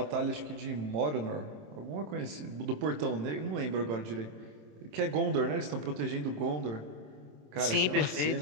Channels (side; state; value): left; late; 27 ms